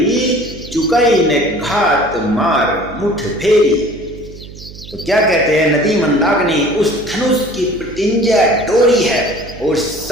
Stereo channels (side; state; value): right; noise; hum, 16 dB below the sound